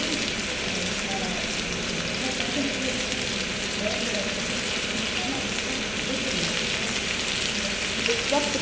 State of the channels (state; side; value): noise; right; hum, 13 dB below the sound